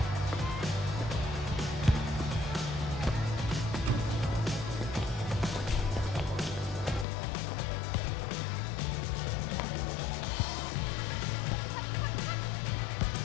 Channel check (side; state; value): right; drops out; at 7.1 s